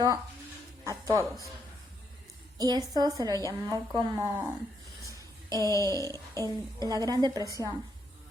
a todos. Y esto se lo llamó como la Gran Depresión.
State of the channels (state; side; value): normal; both; correlation 0.76